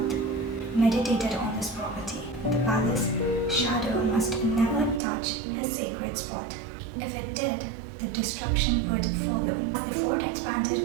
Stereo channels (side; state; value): left; drops out; at 5.0 s